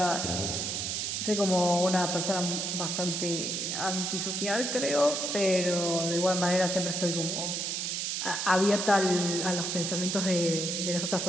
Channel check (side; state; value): right; noise; hiss, 1 dB below the sound